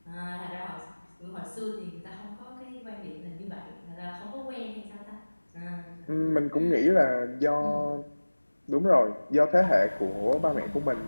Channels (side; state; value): both; inverted; correlation -1.00